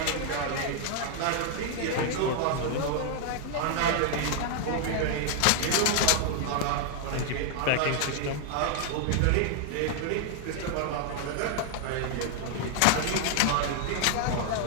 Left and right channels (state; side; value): different; both; correlation 0.00